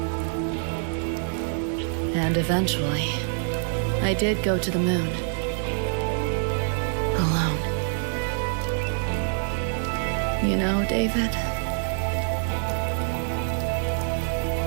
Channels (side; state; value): left; silent; digital silence